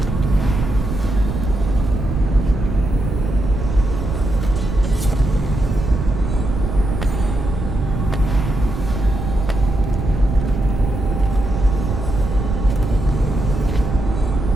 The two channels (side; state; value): right; noise; rumble, 4 dB below the sound